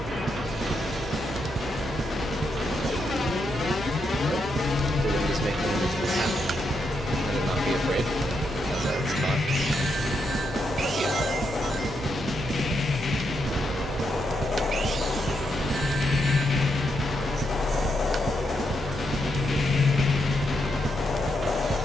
The wind is making a visible path. I will not be afraid, as I was taught.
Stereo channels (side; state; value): both; normal; correlation 0.81